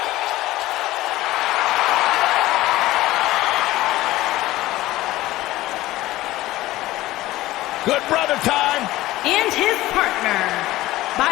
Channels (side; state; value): right; quieter; 16.9 dB